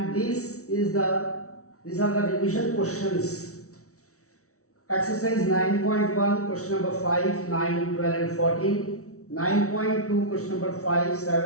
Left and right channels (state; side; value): late; right; 0.64 ms